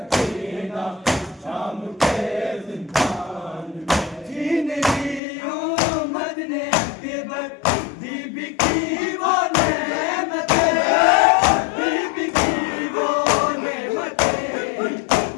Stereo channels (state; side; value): drops out; right; at 5.2 s